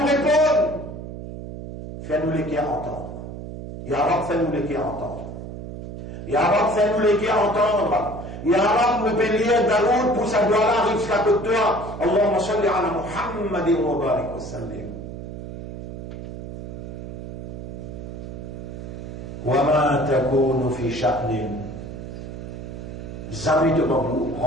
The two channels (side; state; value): right; noise; hum, 9 dB below the sound